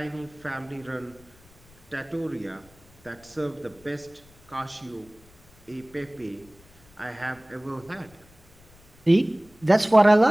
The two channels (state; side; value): noise; left; rumble, 28 dB below the sound